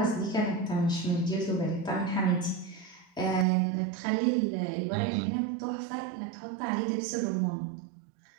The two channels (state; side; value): drops out; left; at 3.5 s